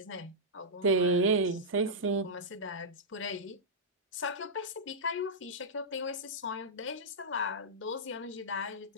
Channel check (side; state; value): both; normal; correlation -0.11